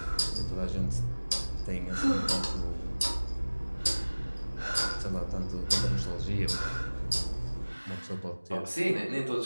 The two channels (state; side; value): inverted; both; correlation -1.00